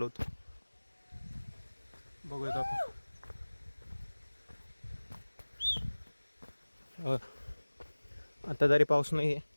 होतो. बघूयात आपण. आता जरी पाऊस नाही आहे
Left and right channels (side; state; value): both; inverted; correlation -1.00